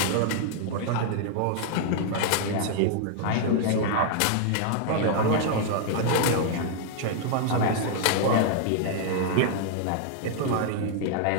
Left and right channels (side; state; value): both; different; correlation -0.01